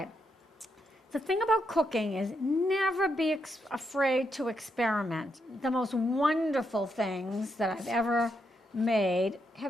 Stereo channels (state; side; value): normal; both; correlation 0.81